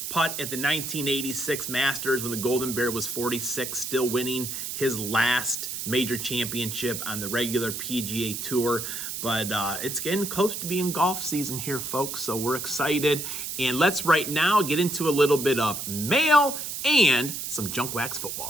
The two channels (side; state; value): right; noise; hiss, 5 dB below the sound